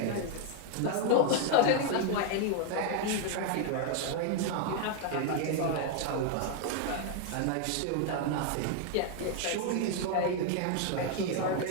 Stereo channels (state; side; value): different; both; correlation 0.00